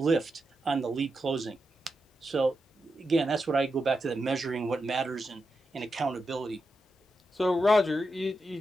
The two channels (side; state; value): both; normal; correlation 0.88